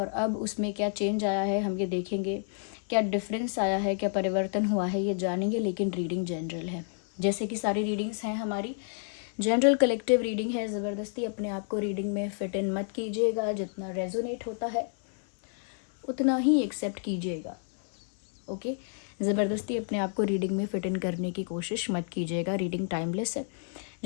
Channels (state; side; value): silent; right; 58 dB below the other